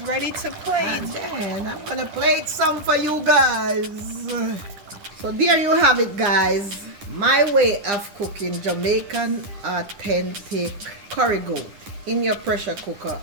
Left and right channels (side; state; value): left; late; 10 ms